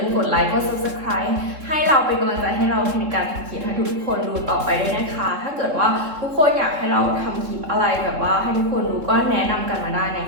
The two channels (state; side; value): late; left; 3.7 ms